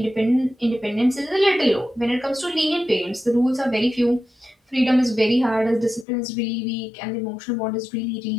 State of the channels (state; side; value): drops out; right; at 6.1 s